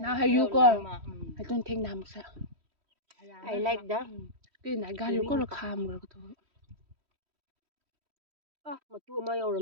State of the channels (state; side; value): late; left; 3.1 ms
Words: hay you go. I don't think nam sa. I like that Cái này gan you go là kham rồi thôi. matu ma